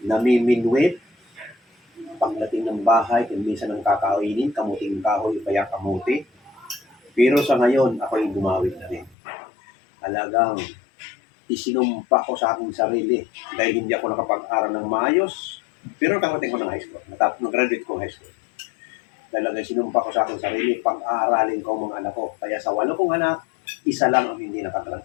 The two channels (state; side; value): drops out; right; at 9.2 s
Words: namiminwit, pagdating ng bahay, kung minsan ang kakainin, kamuting kahoy o kaya kamuti. Pero sa ngayon, ako'y gumawit na rin. Talagang isinumpa ko sa aking sarili dahil hindi ako nakapag-aral ng maayos. Pero nakarating ko ng high school. Nag-graduate ko high school. Talagang sinumpa ko sa aking sarili, pag-aaralin ko ang mga anak ko. Kaya sa 8 kong anak, isa lang ang hindi